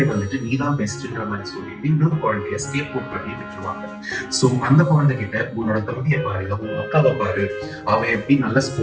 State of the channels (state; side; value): identical; both; correlation 1.00